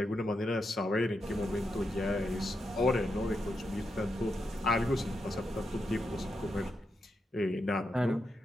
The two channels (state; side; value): normal; both; correlation 0.85